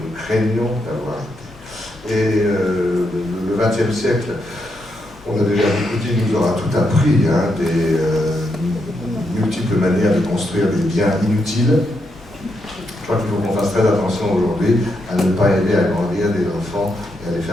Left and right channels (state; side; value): normal; both; correlation 0.81